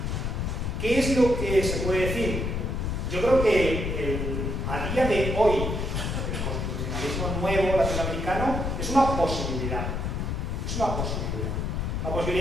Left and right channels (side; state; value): left; noise; rumble, 1 dB below the sound